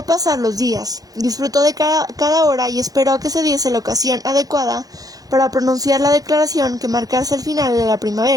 pasar los días, disfrutó de cada hora y esperó a que se diese la ocasión adecuada para pronunciar la declaración que marcase el final de la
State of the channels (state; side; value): late; left; 0.18 ms